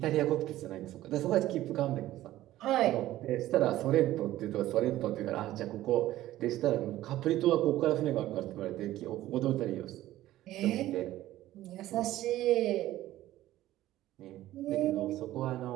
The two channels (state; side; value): quieter; left; 14.8 dB